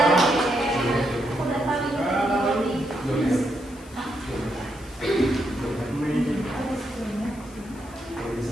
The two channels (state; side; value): noise; left; hiss, 23 dB below the sound